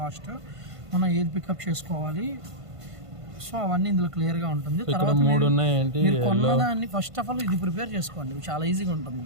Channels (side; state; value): left; late; 1.5 ms